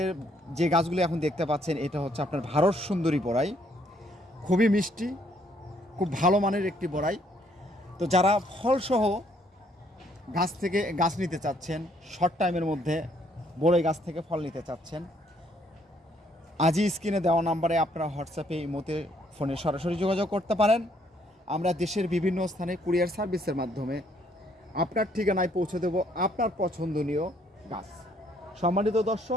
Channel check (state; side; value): normal; both; correlation 0.68